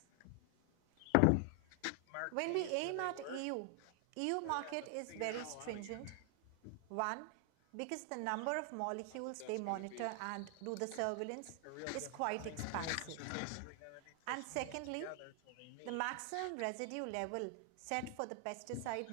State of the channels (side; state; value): both; different; correlation 0.00